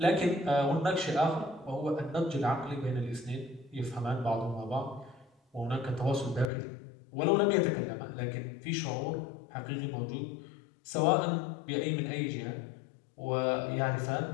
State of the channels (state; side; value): drops out; right; at 6.5 s